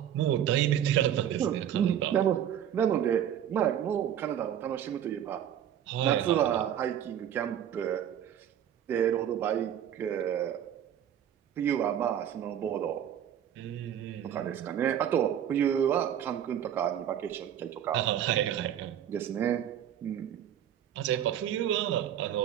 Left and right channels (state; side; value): quieter; left; 10.1 dB